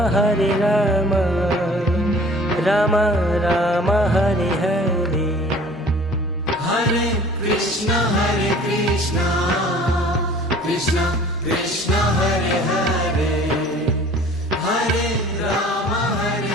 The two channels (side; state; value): both; normal; correlation 0.49